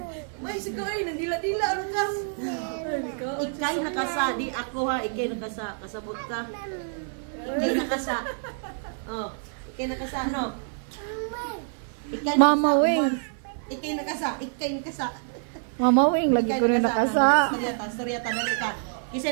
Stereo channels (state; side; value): silent; left; 57 dB below the other